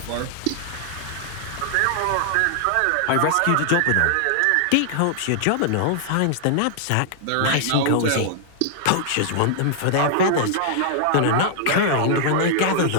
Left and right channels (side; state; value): both; different; correlation -0.01